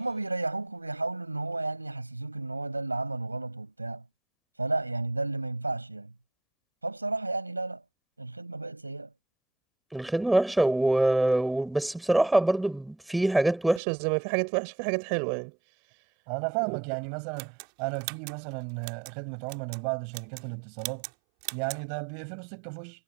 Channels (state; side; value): drops out; left; at 13.8 s